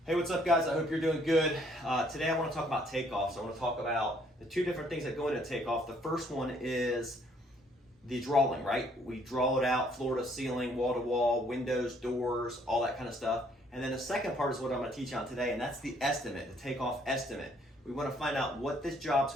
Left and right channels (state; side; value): normal; both; correlation 0.65